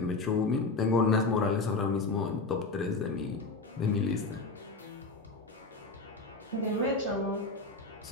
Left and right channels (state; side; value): quieter; right; 3.6 dB